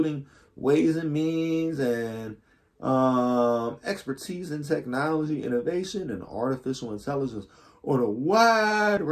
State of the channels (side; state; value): both; identical; correlation 1.00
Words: Ways and Means and expertise in technology, innovation, and artificial intelligence on a wide